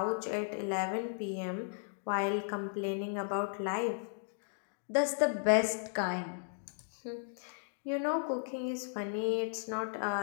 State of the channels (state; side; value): silent; right; digital silence